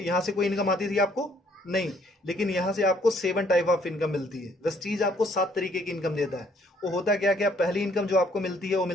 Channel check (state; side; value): normal; both; correlation 0.65